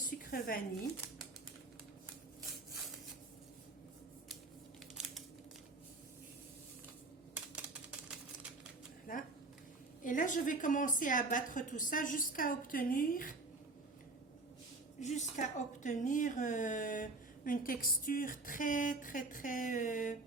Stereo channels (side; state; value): left; quieter; 3.2 dB